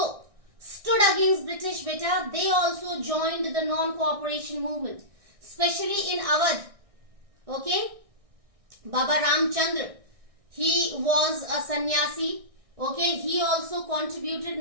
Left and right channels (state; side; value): late; left; 1.6 ms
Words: stood against British beta. They also joined the non-cooperation movement, especially in Awadh. Okay, Baba Ramchandra, he was a sannyasi. Okay, he also